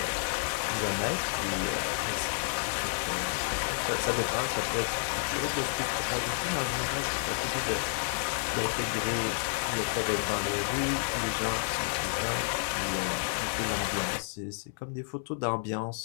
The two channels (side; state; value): right; silent; 57 dB below the other